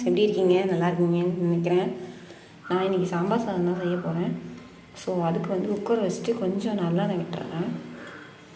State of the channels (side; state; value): both; identical; correlation 1.00